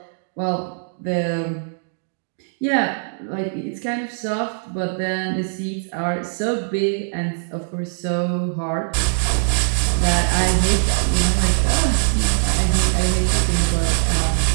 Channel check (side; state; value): left; silent; digital silence